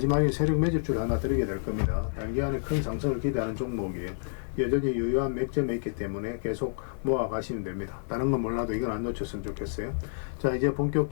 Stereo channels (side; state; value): right; silent; 57 dB below the other